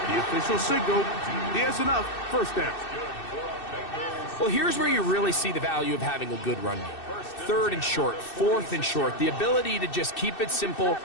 the official signal, he has enough. First down. Well, here's where you really see the value of having a good run game. 3rd and short, 4th and short. The ability to just keep it simple,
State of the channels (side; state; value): right; late; 2.6 ms